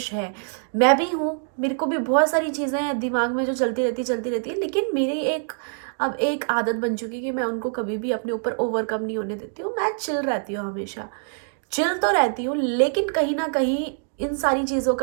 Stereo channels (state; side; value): silent; left; digital silence